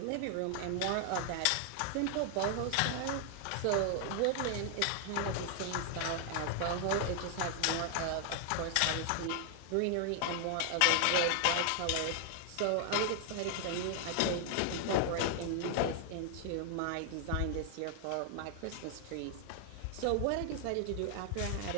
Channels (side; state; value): both; different; correlation 0.00